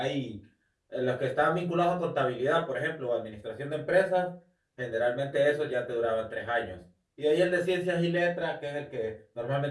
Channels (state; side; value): identical; both; correlation 1.00